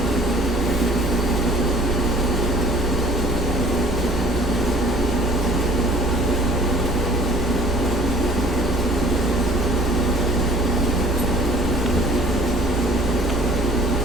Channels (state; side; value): normal; both; correlation 0.54